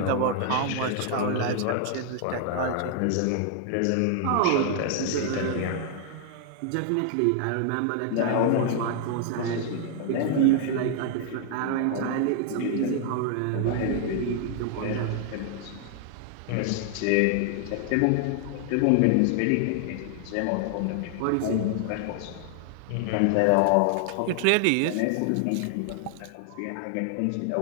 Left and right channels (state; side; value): different; both; correlation 0.00